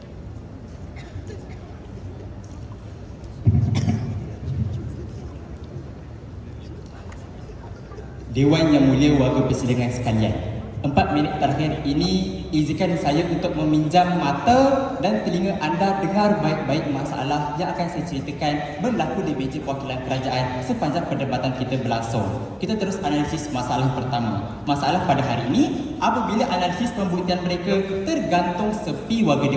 Dewan yang mulia warga persidangan sekalian, 4 minit terakhir ini izinkan saya untuk meminjam mata dan telinga anda dengar baik-baik masalah yang akan saya ceritakan berlaku di meja perwakilan kerajaan sepanjang perdebatan kita berlangsung. Kita terus analisis masalah pertama. Masalah pada hari ini, apabila analisis pembuktian mereka tergantung sepi warga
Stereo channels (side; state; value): both; identical; correlation 1.00